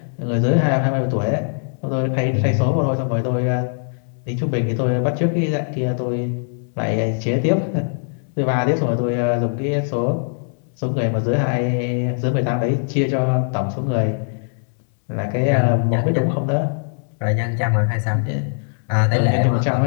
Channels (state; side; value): silent; right; 65 dB below the other